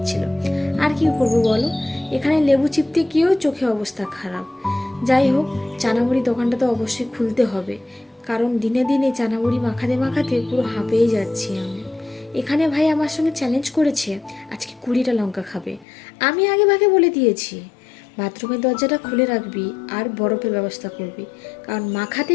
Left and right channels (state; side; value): drops out; right; at 15.9 s